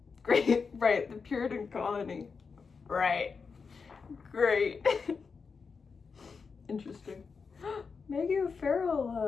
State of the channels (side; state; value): right; quieter; 5.2 dB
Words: Great, right, the Puritan colony. Right. Great. Interesting. Maggie